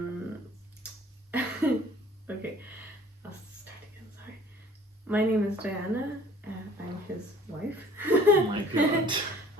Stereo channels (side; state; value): both; normal; correlation 0.51